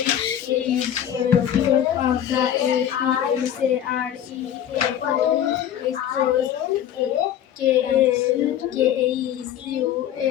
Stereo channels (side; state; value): right; quieter; 10.4 dB